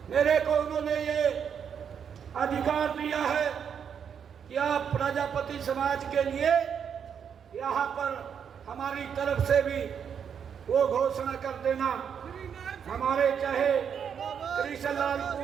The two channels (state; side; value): quieter; left; 7.6 dB